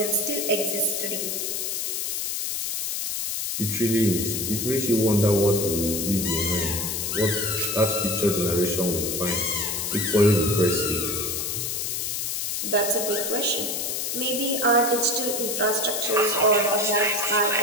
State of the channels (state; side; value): noise; left; hiss, 2 dB below the sound